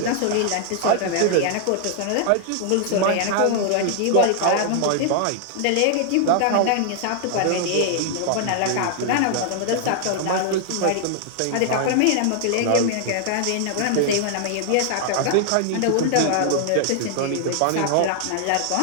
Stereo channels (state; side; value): different; both; correlation 0.00